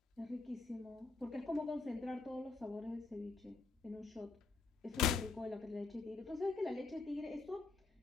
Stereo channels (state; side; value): quieter; right; 4.1 dB